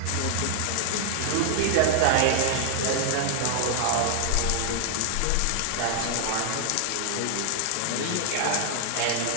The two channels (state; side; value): different; both; correlation 0.00